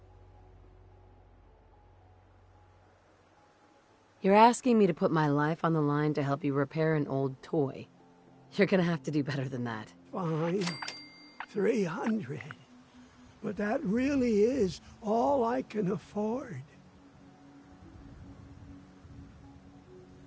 You're asking me to put my life on the line to help you repair an old toy. You're gonna have to do better than that. Fine. 300. But that really is all I can afford.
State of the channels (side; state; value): both; identical; correlation 1.00